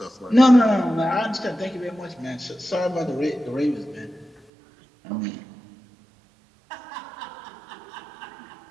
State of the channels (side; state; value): left; drops out; at 4.5 s